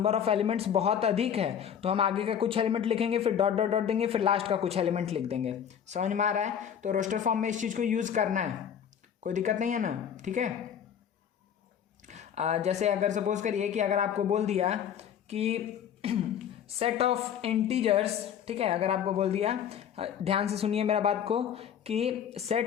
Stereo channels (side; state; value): right; quieter; 8.7 dB